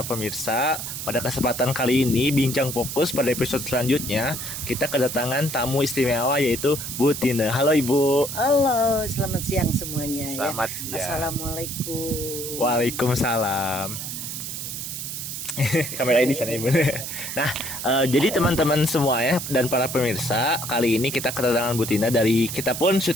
pemirsa. Pada kesempatan kali ini Bincang Fokus pada episode selanjutnya kita kedatangan tamu istimewa yaitu Bu Tina. Halo Ibu. Halo, selamat siang semuanya. Selamat ya. siang. Assalamualaikum. Waalaikumsalam. Kamera ini sana Ibu. Nah, jadi teman-teman semua ya dan para pemirsa, kali ini kita kedatangan Bu Tina dari kita pun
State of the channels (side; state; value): right; noise; hiss, 6 dB below the sound